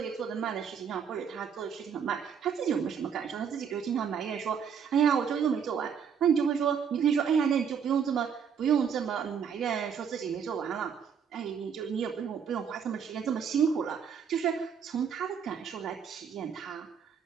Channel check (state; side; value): quieter; left; 7.2 dB